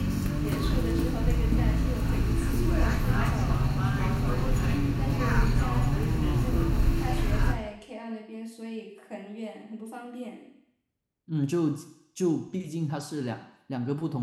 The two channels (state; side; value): identical; both; correlation 1.00